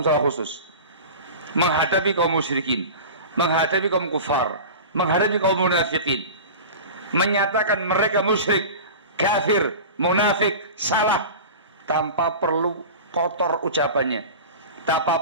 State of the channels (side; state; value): both; inverted; correlation -0.33